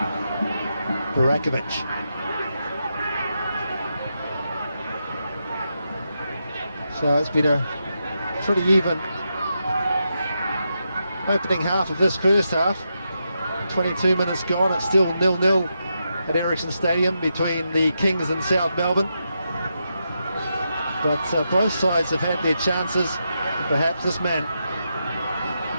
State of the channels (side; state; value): both; inverted; correlation -0.85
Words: Burakovic. So it's been a pretty even opening half of this first half. 22 minutes gone, it's still 0-0 at Ericsson Stadium between the Kingz and South Melbourne. But both sides have had their chances. And perhaps this man